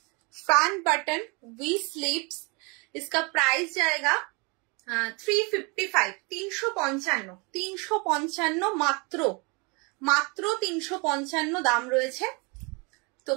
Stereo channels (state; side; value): quieter; left; 30.4 dB